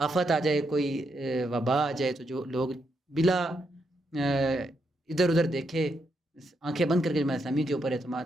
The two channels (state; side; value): normal; both; correlation 0.80